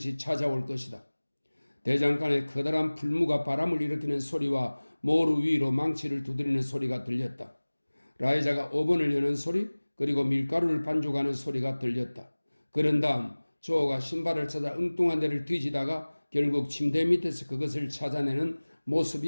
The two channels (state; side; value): inverted; both; correlation -1.00